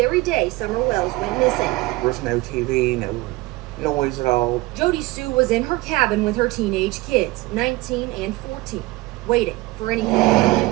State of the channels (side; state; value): left; quieter; 20.6 dB